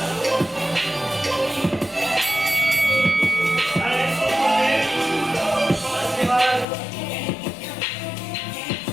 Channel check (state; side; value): drops out; right; at 6.7 s